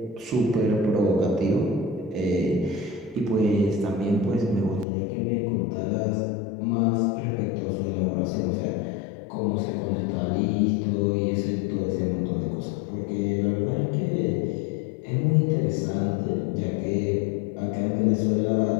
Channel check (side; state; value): right; drops out; at 4.9 s